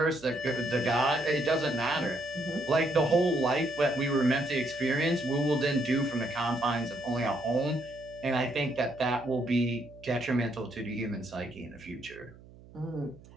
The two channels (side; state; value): right; noise; hum, 21 dB below the sound